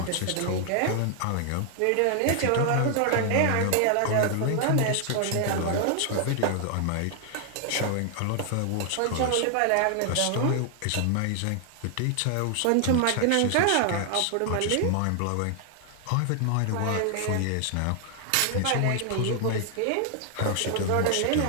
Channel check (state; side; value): different; both; correlation 0.00